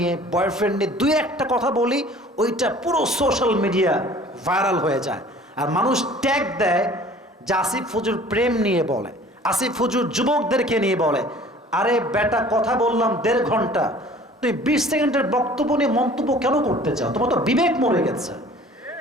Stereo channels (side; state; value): both; normal; correlation 0.49